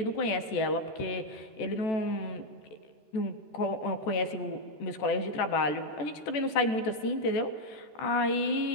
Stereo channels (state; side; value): late; right; 14 ms